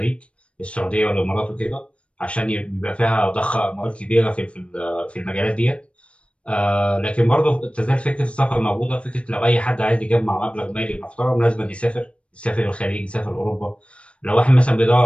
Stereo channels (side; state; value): right; late; 0.060 ms